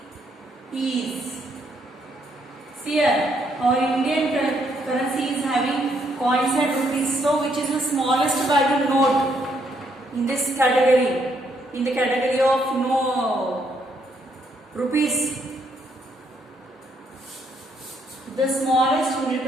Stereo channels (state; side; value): normal; both; correlation 0.72